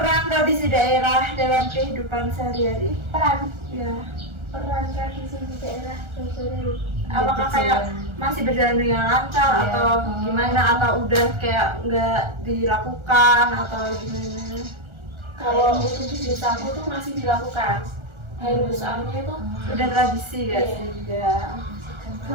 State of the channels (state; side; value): late; left; 1.4 ms